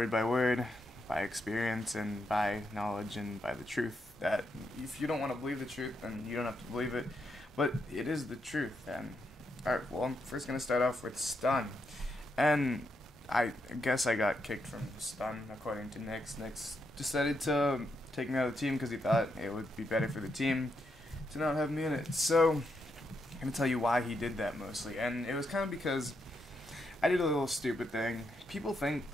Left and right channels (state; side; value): normal; both; correlation 0.81